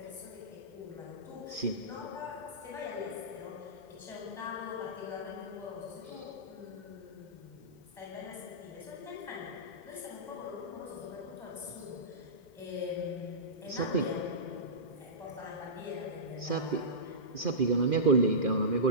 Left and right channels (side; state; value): right; late; 2.1 ms